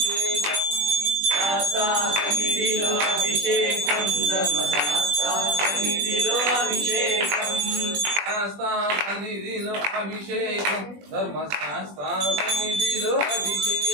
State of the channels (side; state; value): left; late; 20 ms